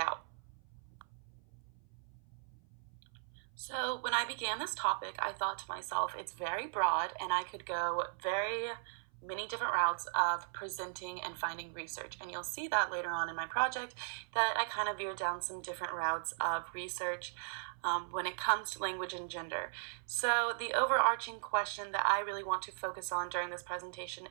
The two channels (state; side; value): silent; left; 53 dB below the other